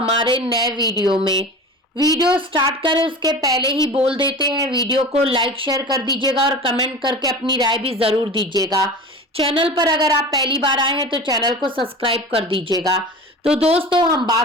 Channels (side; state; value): both; normal; correlation 0.34